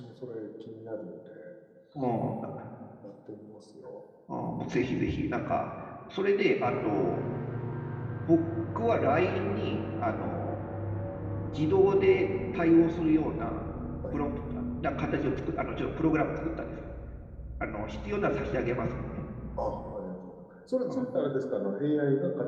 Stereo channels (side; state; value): both; identical; correlation 1.00